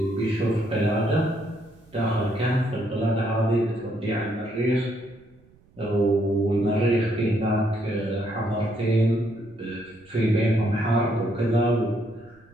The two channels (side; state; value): right; noise; rumble, 29 dB below the sound